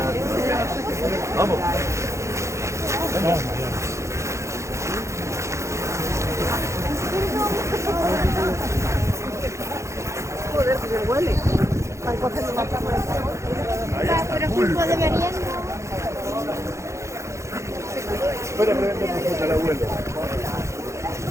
Vamos. Vamos. Joder, que se huele. Pero tiempo de merienda. Espera, pregunta al abuelo.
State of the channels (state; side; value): late; left; 0.14 ms